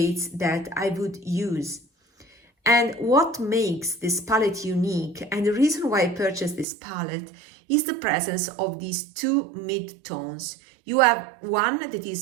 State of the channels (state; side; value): drops out; left; at 6.7 s